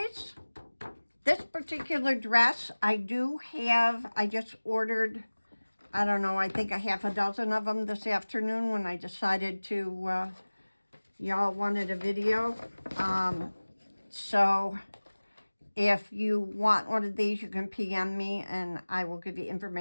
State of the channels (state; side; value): inverted; both; correlation -1.00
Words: this particular dress, I just ordered, I don't know, I think a half a dozen of them this afternoon when I decided to, y'all wanted a video. So if you want one of these, you can PM me and I will give you